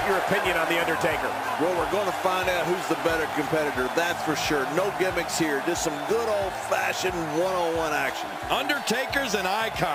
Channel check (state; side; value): identical; both; correlation 1.00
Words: your opinion on The Undertaker. Well, we're going to find out who's the better competitor, that's for sure. No gimmicks here, just some good old-fashioned one-on-one action. Undertaker's an